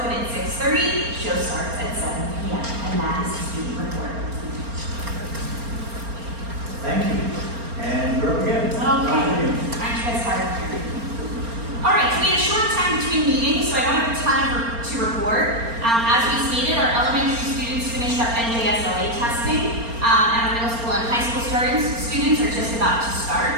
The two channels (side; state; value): left; late; 4.3 ms